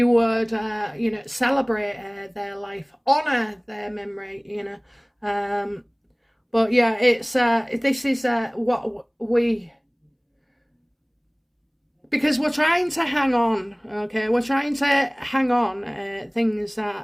would, you know, celebrate their life, honour their memory, you know. But yeah, it's this is what we, because we're trying to hang on, okay? We're trying to hang on things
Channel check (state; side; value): identical; both; correlation 1.00